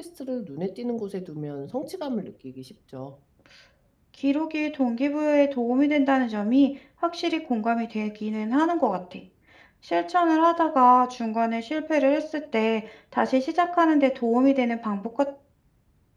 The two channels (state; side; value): identical; both; correlation 1.00